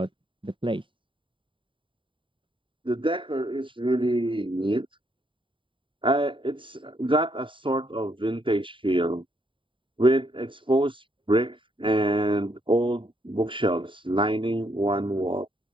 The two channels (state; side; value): late; left; 0.25 ms